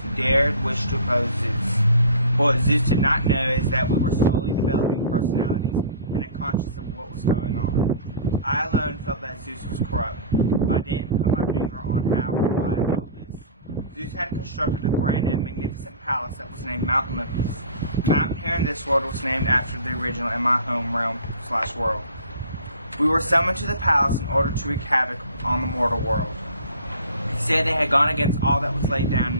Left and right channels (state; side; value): inverted; both; correlation -0.42